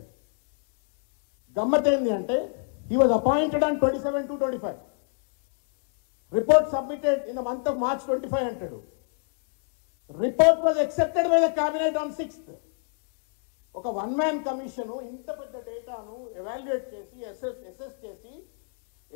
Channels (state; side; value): silent; right; 59 dB below the other